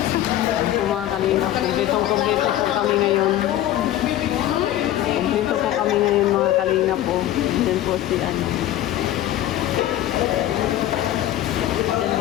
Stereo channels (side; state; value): right; quieter; 13.1 dB